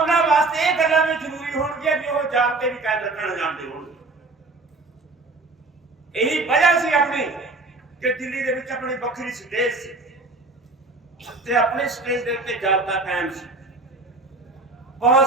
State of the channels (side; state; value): left; quieter; 3.3 dB